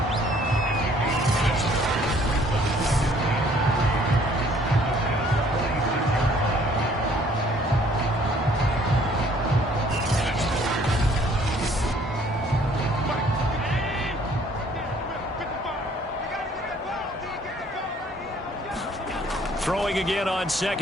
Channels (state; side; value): normal; both; correlation 0.59